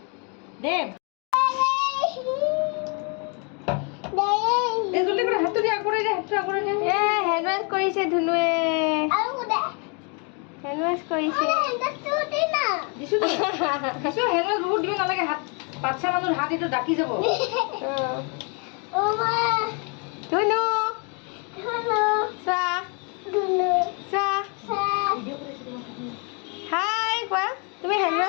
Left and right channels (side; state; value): right; quieter; 35.6 dB